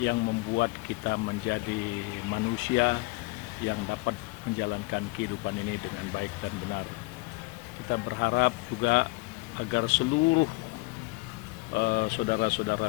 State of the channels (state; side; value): quieter; right; 24.7 dB